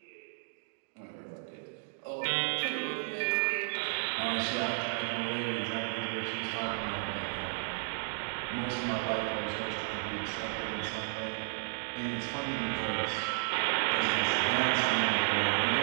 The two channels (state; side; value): silent; left; digital silence